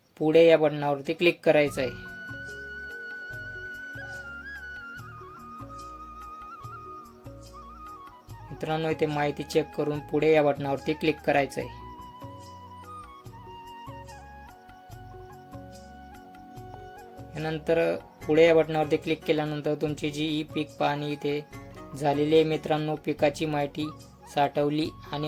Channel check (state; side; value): identical; both; correlation 1.00